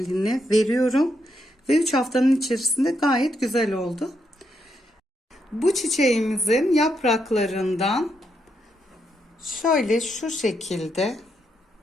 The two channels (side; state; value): both; normal; correlation 0.79